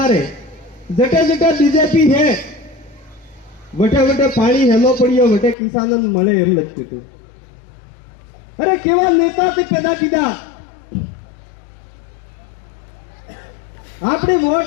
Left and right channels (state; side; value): drops out; right; at 5.6 s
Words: है, जटे जटे बीजेपी है वटे वटे पानी हेलो पड़ियो, वटे किसानों मळे एम लगती थी। अरे केवा नेता ते पैदा कीधा, अपनी